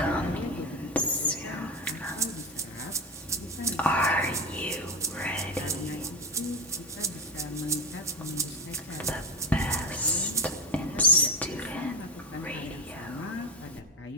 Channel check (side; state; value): both; normal; correlation 0.18